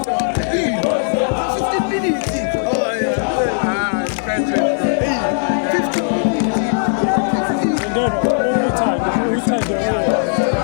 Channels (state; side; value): silent; right; 68 dB below the other